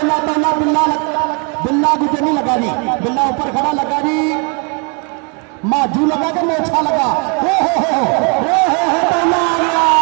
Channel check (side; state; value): left; quieter; 34.6 dB